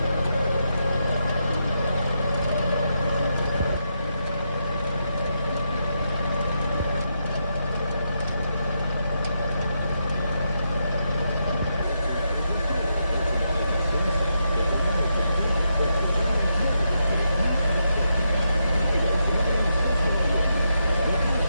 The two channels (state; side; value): inverted; both; correlation -0.82